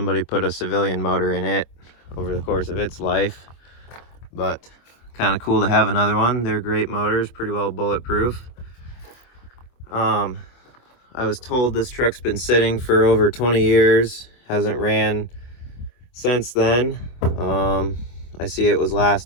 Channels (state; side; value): late; right; 24 ms